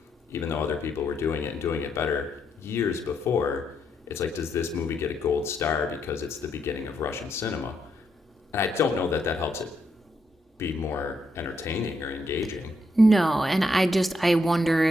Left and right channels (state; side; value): normal; both; correlation 0.78